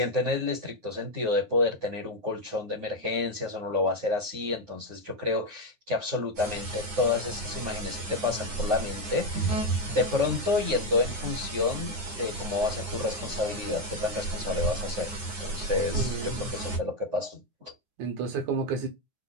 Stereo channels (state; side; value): late; left; 9.6 ms